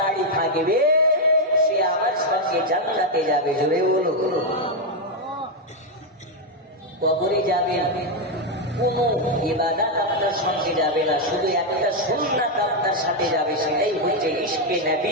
থাকবে সে আমার সঙ্গে জান্নাতে যাবে। জোরে বলো। কবরে যাবে কোনো ইবাদত আপনার সঙ্গে যাবে না, শুধু একটা সুন্নাত আপনার সাথে যাবে, সেটাই হচ্ছে ইশকে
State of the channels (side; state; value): both; normal; correlation 0.03